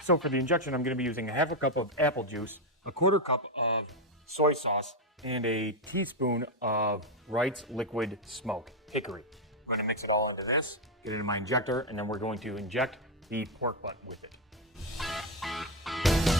So for the injection, I'm going to be using a half a cup of apple juice, a 1/4 cup of soy sauce, and a teaspoon of Wright's Liquid Smoke Hickory. I'm going to mix it all into this, get it in my injector, and then we're going to inject the pork butt with it.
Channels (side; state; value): both; normal; correlation 0.06